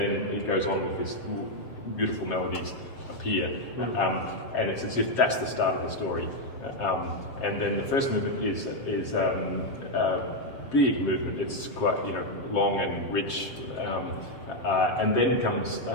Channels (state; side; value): late; right; 7.4 ms